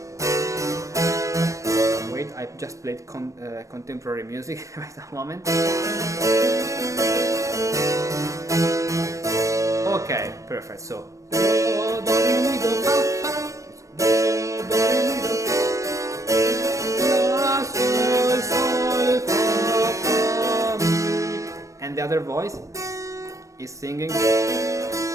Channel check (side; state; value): left; late; 0.15 ms